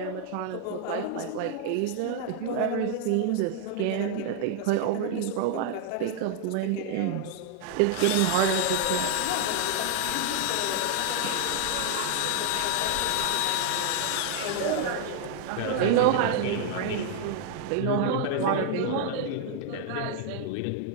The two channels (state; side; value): different; both; correlation 0.00